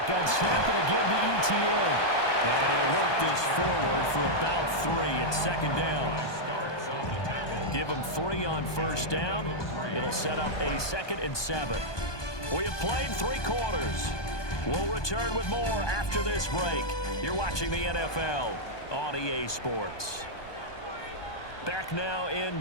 snap and again to ETN. And he'll work this forward for about 3 at 2nd down. Give him 3 on first down. It'll set up a 2nd and 7. We have played 3 quarters. We'll return with more after this break. You're watching the NFL on EA Sports. Back now in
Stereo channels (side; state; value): right; late; 1.2 ms